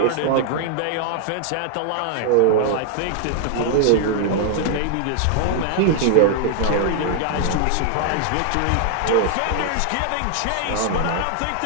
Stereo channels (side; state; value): both; different; correlation 0.00